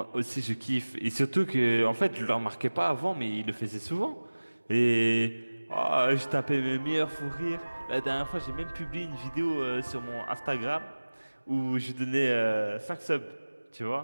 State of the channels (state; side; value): inverted; both; correlation -1.00